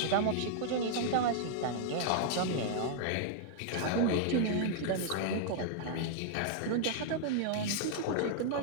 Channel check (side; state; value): both; different; correlation -0.01